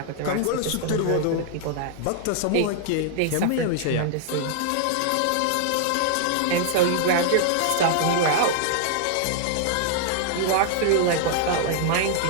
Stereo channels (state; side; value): different; both; correlation -0.01